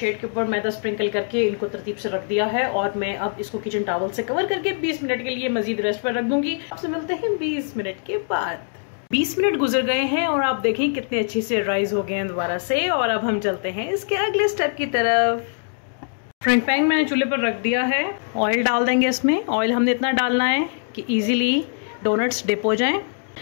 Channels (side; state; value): right; silent; digital silence